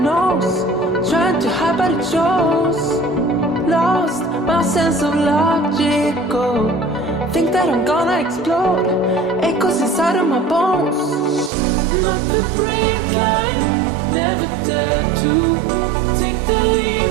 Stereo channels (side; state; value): left; drops out; at 11.5 s